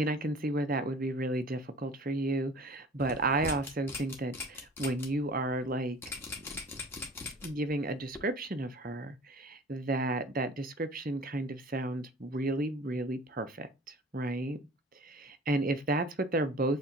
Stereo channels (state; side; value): normal; both; correlation 0.45